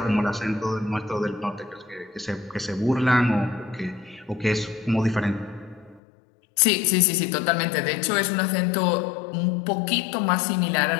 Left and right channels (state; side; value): drops out; right; at 6.0 s